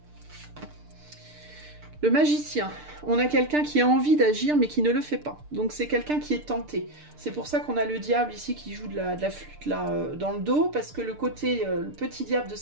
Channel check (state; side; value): late; left; 6.7 ms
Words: Le magicien. On a quelqu'un qui a envie d'agir mais qui ne le fait pas. Donc c'est quelqu'un qui est tenté. C'est pour ça qu'on a le diable ici qui joue de la flûte là dans le dos, parce que le côté, le petit diable de